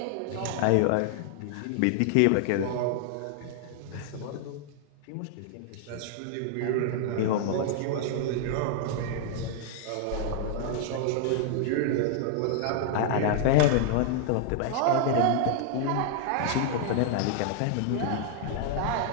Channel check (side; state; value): both; different; correlation -0.01